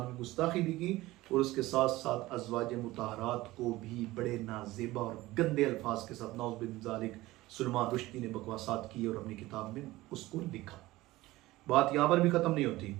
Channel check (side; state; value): left; quieter; 18.3 dB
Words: کی گستاخی بھی کی، اور اس کے ساتھ ساتھ ازواج مطہرات کو بھی بڑے نازیبا اور گندے الفاظ کے ساتھ نعوذ باللہ من ذالک سلمان رشدی نے بکواسات کی اور اپنی کتاب میں اس کو لکھا۔ بات یہاں پر بھی ختم نہیں ہوتی۔